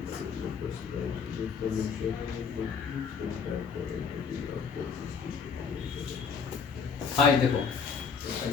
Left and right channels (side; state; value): right; quieter; 6.1 dB